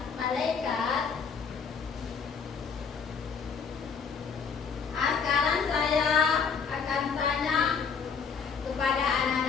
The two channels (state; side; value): quieter; right; 6.0 dB